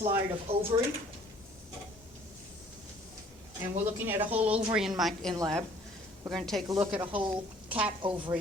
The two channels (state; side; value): normal; both; correlation 0.56